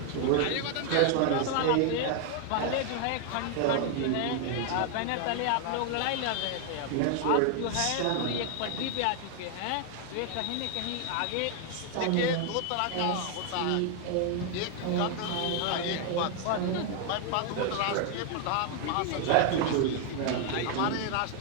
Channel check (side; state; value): both; different; correlation 0.00